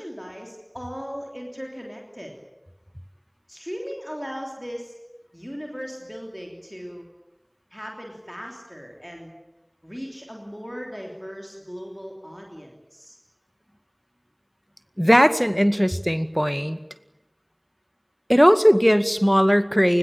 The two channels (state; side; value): identical; both; correlation 1.00